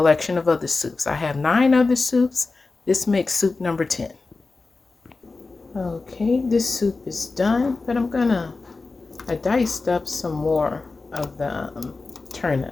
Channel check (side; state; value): right; quieter; 3.8 dB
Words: of other soups. I have 9 other soups. This makes soup number 10. Okay, this soup is done, but I diced up some more of the